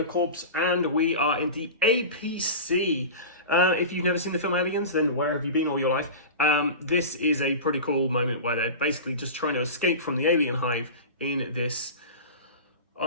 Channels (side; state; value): both; inverted; correlation -0.30